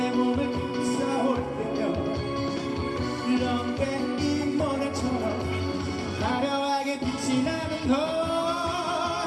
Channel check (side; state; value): both; identical; correlation 1.00